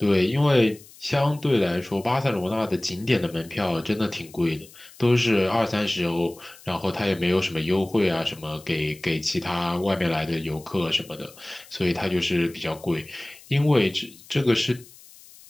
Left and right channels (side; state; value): left; noise; hiss, 22 dB below the sound